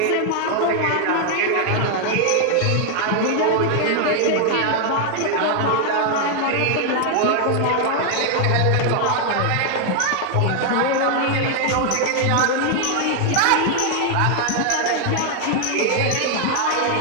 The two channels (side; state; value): both; different; correlation 0.00